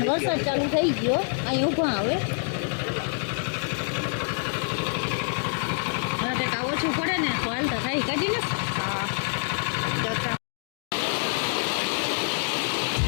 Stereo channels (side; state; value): right; silent; 57 dB below the other